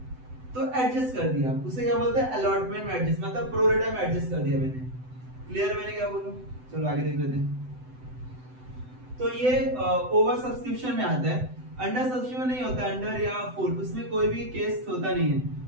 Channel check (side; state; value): left; late; 7.9 ms